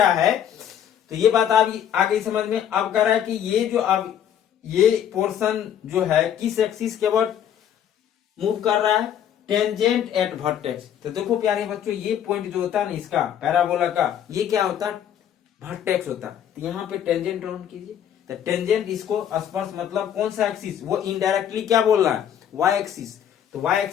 है, तो ये बात आ गई समझ में। अब कह रहा है कि ये जो अब ये पोर्शन जो है किस एक्सिस के अबाउट मूव कर रहा है, टेंजेंट एट वर्टेक्स। तो देखो प्यारे बच्चों ये पॉइंट जो होता है ना इसका पैराबोला का, ये क्या होता है वर्टेक्स होता है। तो यहाँ पे टेंजेंट ड्रॉ कीजिए, तो टेंजेंट इसको स्पर्श मतलब कौन सा एक्सिस, वो इनडायरेक्टली क्या बोल रहा है वाई एक्सिस। तो वाई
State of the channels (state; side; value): quieter; right; 9.7 dB